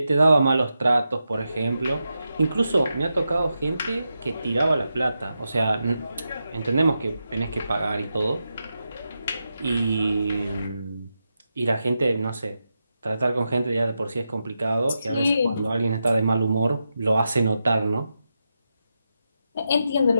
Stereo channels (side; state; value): both; inverted; correlation -0.87